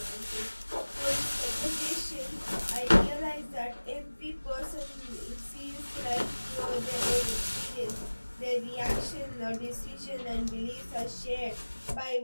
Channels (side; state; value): both; inverted; correlation -1.00